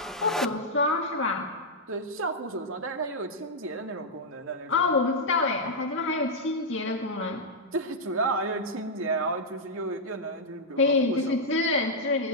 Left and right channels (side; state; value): both; normal; correlation -0.06